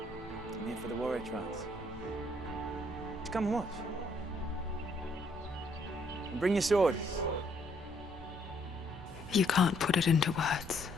I'm here for the warrior trials. Just come and watch. And bring your sword. You can't put it into words.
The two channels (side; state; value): both; normal; correlation 0.69